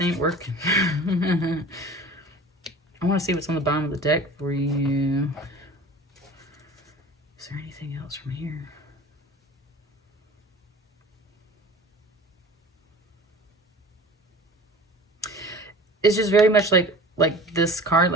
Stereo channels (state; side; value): normal; both; correlation 0.40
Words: ain't working. I want to see what's on the bottom of the deck for you. Is there anything else from here? It's just very much like this card,